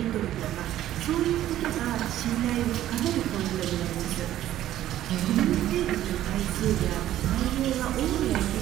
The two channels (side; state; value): left; quieter; 13.0 dB